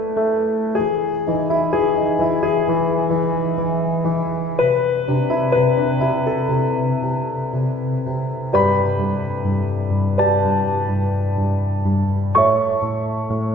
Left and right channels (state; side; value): normal; both; correlation 0.60